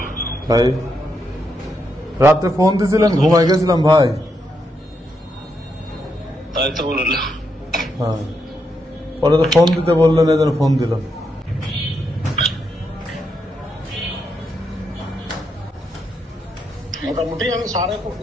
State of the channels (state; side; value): normal; both; correlation 0.81